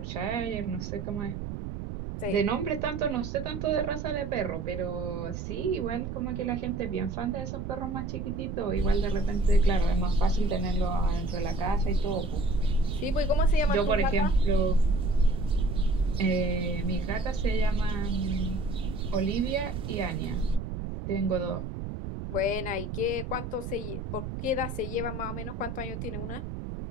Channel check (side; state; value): right; noise; rumble, 6 dB below the sound